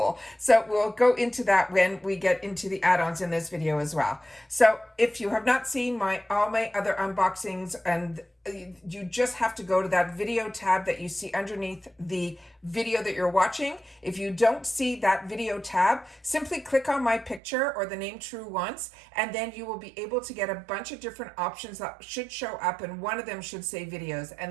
So we'll go into that when we get into the add-ons in this video as well. So if you have not seen all my other unboxings, and you just have to go to that video tab that you see underneath the video that you're watching. If you don't see that video tab, simply click on my picture or the name Truewants, and then you will be able to get a bunch of different options that should show up, and one of them should say videos,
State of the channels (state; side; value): drops out; left; at 17.4 s